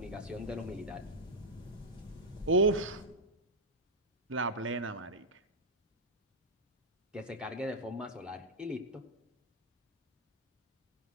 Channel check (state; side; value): normal; both; correlation -0.03